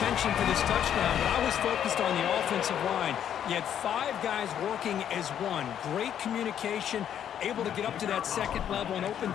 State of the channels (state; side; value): quieter; right; 9.6 dB